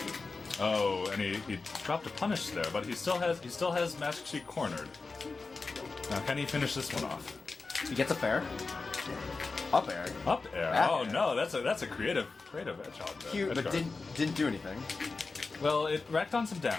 Oh, and he dropped a punish there, but he still has MaskedSheik cornered. Now, can he finish this one off? He gets a fair. Up air. Up air. Back Oh air. no, that's a creative hedgehog there. Cute, but didn't do anything. Well, it racked on some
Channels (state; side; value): quieter; right; 4.0 dB